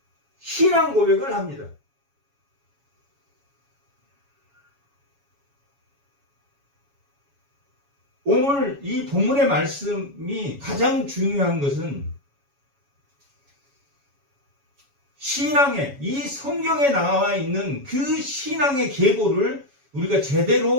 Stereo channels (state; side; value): late; left; 7.2 ms